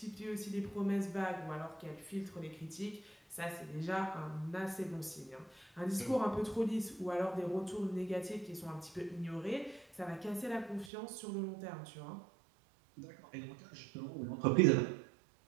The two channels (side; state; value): left; drops out; at 10.9 s